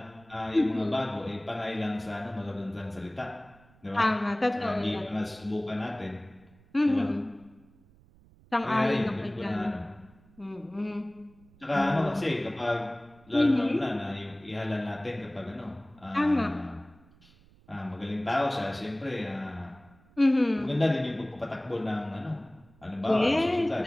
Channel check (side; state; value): right; noise; rumble, 27 dB below the sound